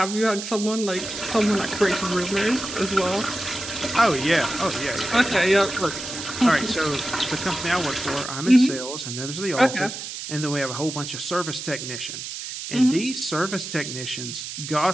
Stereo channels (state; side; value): noise; right; hiss, 8 dB below the sound